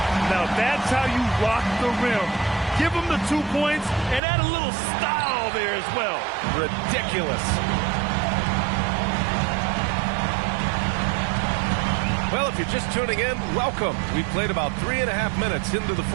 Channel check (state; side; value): drops out; left; at 4.2 s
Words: Now, that's how you rock the rim. Give him the 2 points and add a little style there as well. Ridiculous. Well, if you're just tuning in, welcome. We've played about 3.5 minutes into the